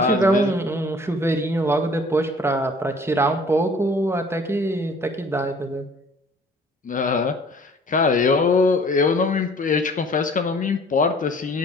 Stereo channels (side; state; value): both; normal; correlation 0.52